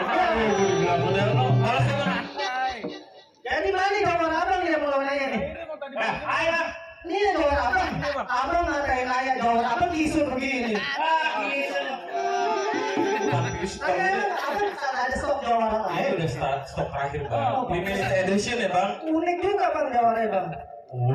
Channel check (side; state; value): both; identical; correlation 1.00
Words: Bilang model lo, malas ya bang. Jadi mana gambar abang yang mau nanya nih? Ayo bang. Ini gambar abang. Abang ngatain ayah gambar abang isu begini. Ah, gitu. lagi stok. Ada stok jawara Ini lain. udah stok terakhir bang. Limited edition ya bang. Unik juga bang jawaranya bang.